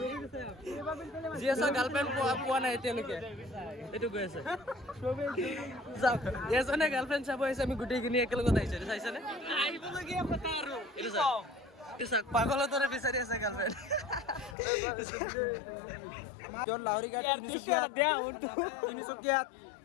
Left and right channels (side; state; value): right; drops out; at 14.6 s